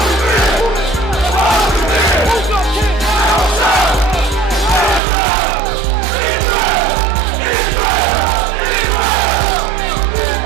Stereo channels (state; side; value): drops out; left; at 5.0 s